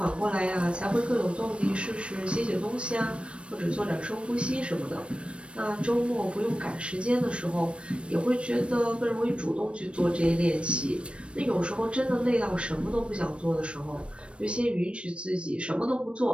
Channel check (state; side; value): late; left; 0.059 ms